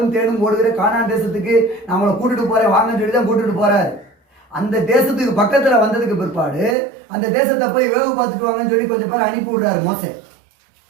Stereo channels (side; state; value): left; drops out; at 6.8 s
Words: தேனும் ஓடுகிற கானான் தேசத்துக்கு நான் அவங்களை கூட்டிட்டு போறேன் வாங்கன்னு சொல்லி தான் கூட்டிட்டு போறாரு. அந்த தேசத்துக்கு பக்கத்துல வந்ததுக்கு பிற்பாடு அந்த தேசத்தை போய் வேவு பார்த்துட்டு வாங்கன்னு சொல்லி கொஞ்சம் பேர் அனுப்பி விடுறாரு. மோசே